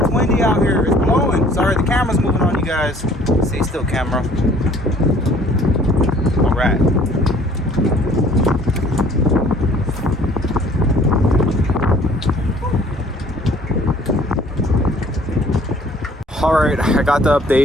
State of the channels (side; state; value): both; normal; correlation 0.55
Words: windy out here. It's blowing. Sorry, the camera's moving on you guys. Stay still, camera. Alright. Alright, I got the